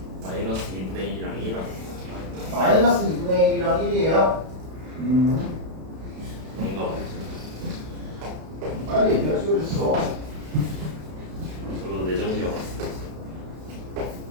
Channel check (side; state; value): left; late; 32 ms